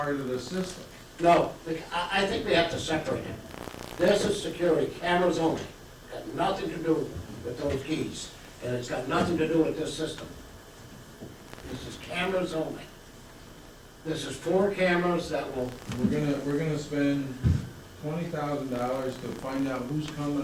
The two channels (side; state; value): both; identical; correlation 1.00